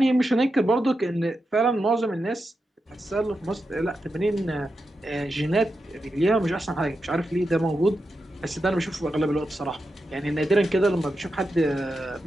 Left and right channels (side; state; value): both; normal; correlation 0.88